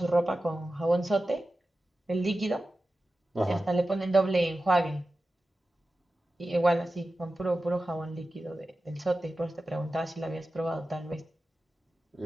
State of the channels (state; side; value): normal; both; correlation 0.94